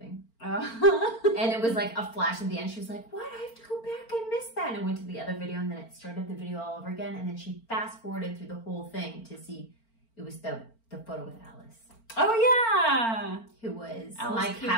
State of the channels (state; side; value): late; right; 4.4 ms